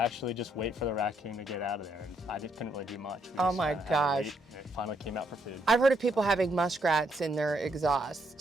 just wait for the raccoon to get out of there. And I just couldn't really do much. Oh my gosh. It finally came out for food. I've heard of people having muskrats in their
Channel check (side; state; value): both; normal; correlation 0.74